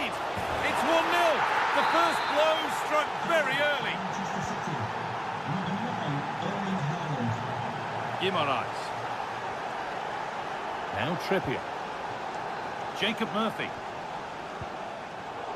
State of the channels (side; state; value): both; identical; correlation 1.00